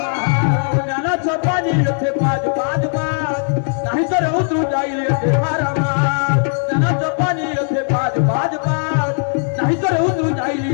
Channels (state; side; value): silent; right; digital silence